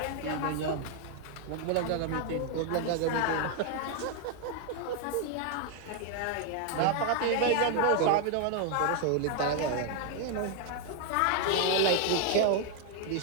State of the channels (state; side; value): different; both; correlation 0.00